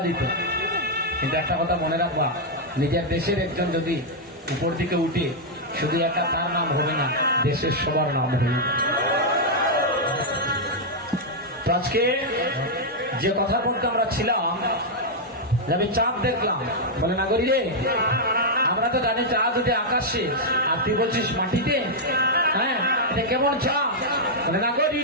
দিত। কিন্তু একটা কথা মনে রাখবা, নিজের দেশের একজন যদি উপর দিকে উঠে, শুধু একা তার নাম হবে না, দেশের সবার নাম হবে। তো আজকে যে কথা বলতে আমরা ছিলাম, আমি চাঁদ দেখলাম, বলে না করি রে, আমরা তো জানি চাঁদ যদি আকাশে, আর তুই বলছিস মাটিতে। হ্যাঁ, এটা কেমন চাঁদ? বলে না করি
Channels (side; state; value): both; normal; correlation -0.04